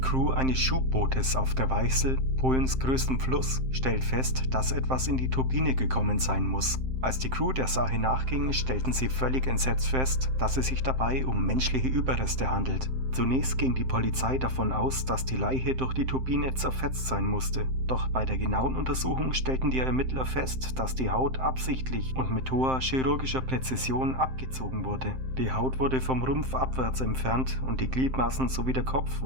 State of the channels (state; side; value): late; left; 7.7 ms